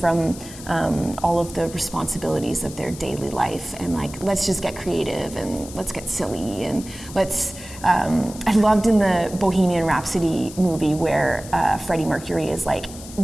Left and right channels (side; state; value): left; noise; hiss, 15 dB below the sound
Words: all of the responsibilities of their daily life, and like, let's just get creative and let's get silly and let's. I loved in the Bohemian Rhapsody movie where Freddie Mercury is like,